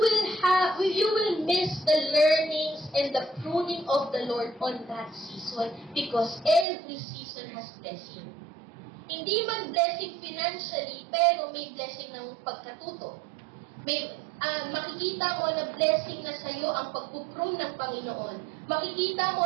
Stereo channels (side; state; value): left; drops out; at 6.7 s